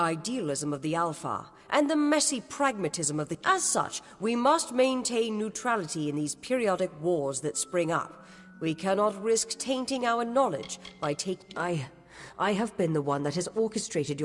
of the Alpha, and the messy pragmatism of the... As such, we must maintain neutrality in these periodic wars that spring up. We cannot risk tainting our knowledge by I have been the one that has orchestrated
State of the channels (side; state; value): both; identical; correlation 1.00